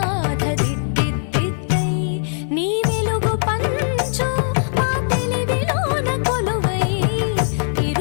దిద్దిద్దిద్దై నీ వెలుగు పంచు మా తెలివిలోన కొలువై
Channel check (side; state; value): right; silent; 65 dB below the other